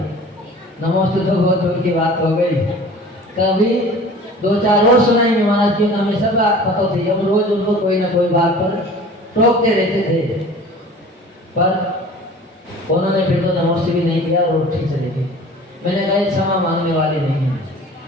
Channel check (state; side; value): normal; both; correlation 0.44